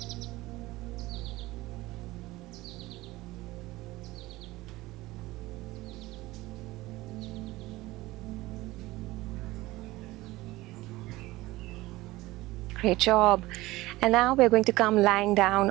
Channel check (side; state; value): left; quieter; 18.9 dB